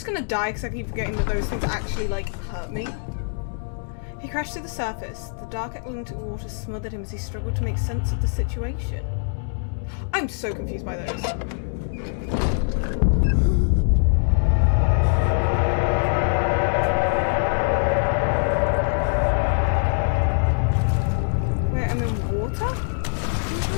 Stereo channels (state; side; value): silent; right; digital silence